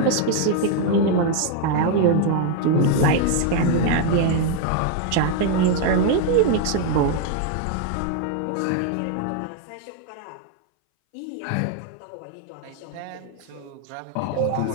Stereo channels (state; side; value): different; both; correlation 0.00